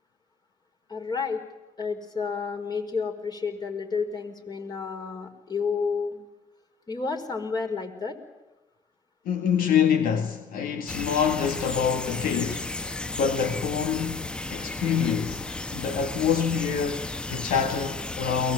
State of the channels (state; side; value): quieter; right; 6.0 dB